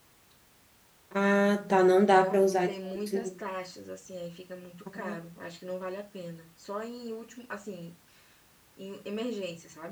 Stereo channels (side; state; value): both; identical; correlation 1.00